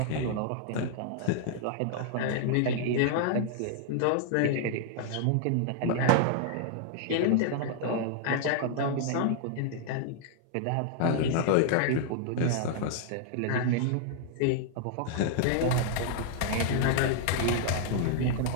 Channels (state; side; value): different; both; correlation -0.01